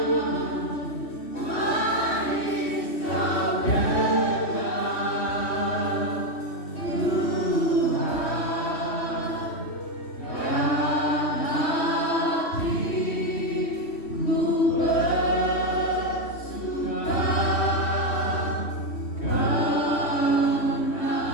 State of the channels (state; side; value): late; right; 3.1 ms